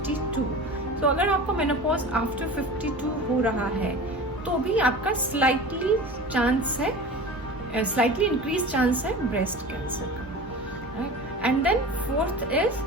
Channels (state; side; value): normal; both; correlation 0.35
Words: तो अगर आपको मेनोपॉज आफ्टर 52 हो रहा है तो भी आपका स्लाइटली इंक्रीज चांस है ब्रेस्ट कैंसर का। And then fourth is